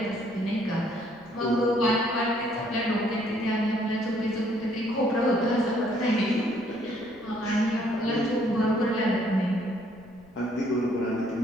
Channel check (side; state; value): right; noise; rumble, 29 dB below the sound